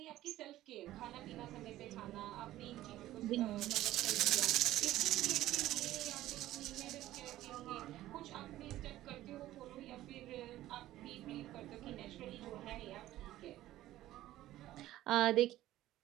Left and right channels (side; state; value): left; quieter; 14.7 dB